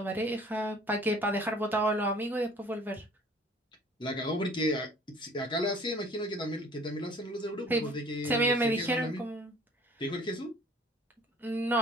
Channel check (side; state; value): both; normal; correlation 0.52